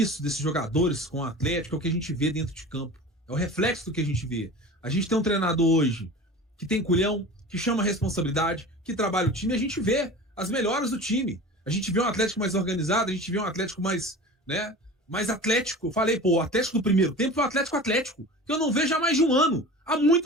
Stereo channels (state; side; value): normal; both; correlation 0.36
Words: desses jogadores com o Atlético é o que a gente vê dentro de campo. É o reflexo do que a gente vê. A gente tem um treinador hoje que tem culhão, que chama a responsabilidade, que trabalha o time, e a gente vê as melhoras do time. A gente vê um Atlético mais organizado, a gente vê um Atlético mais, né, mais atlético. Eu falei, pô, o Atlético do primeiro tempo é o Atlético, que eu não vejo há mais de um ano. Há